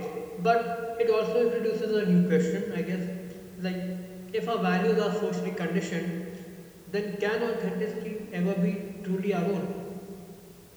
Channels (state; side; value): identical; both; correlation 1.00